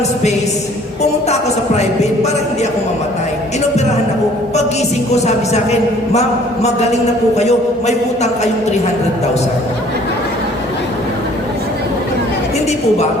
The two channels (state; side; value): normal; both; correlation 0.55